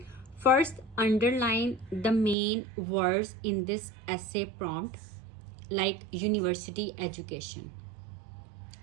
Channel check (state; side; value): drops out; left; at 2.4 s